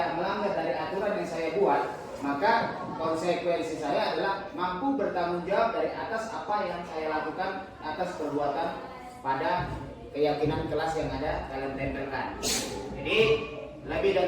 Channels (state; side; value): identical; both; correlation 1.00